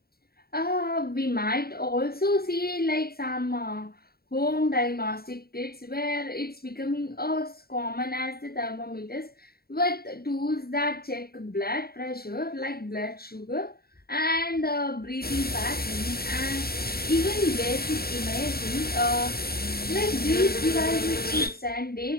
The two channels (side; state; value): right; late; 0.45 ms